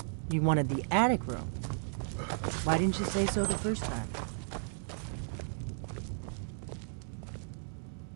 you wanted the attic room. Why didn't you say so the first time?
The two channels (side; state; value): left; silent; digital silence